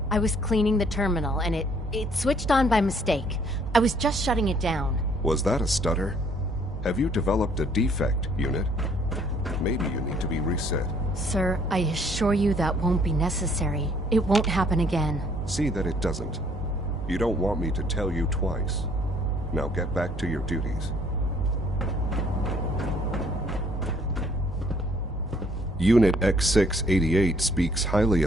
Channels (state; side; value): normal; both; correlation 0.62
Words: I was cleaning the terminal, and it switched on by mistake. I was just shutting it down. Was that a stutter? Have you developed a defect, Unit? Maybe you need to be reset. Sir, I assure you that won't be necessary. It won't happen again. See that it doesn't. You don't want me to tell you twice. Now get back to your duties. Unit X688 speaks highly